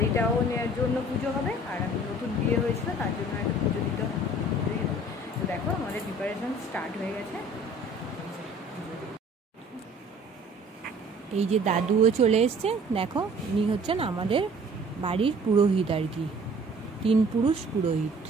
নেওয়ার জন্য পুজো হবে, আর আমি নতুন বিয়ে হয়েছিল তার জন্য একটা পুজো দিতে হবে। তো দেখো আমাদের প্রিপারেশন স্টার্ট হয়ে গেছে। এই যে দাদুও চলে এসছে, দেখো উনি হচ্ছেন আমাদের বাড়ির পুরোহিত আর কি, 3 পুরুষ পুরোহিত।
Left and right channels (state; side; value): normal; both; correlation 0.51